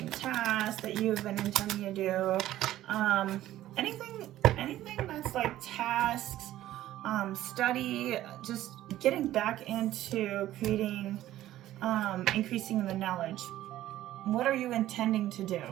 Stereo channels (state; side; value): quieter; left; 14.0 dB